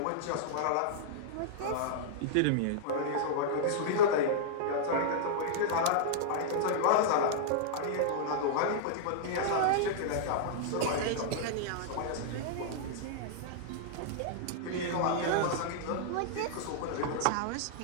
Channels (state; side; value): different; both; correlation -0.02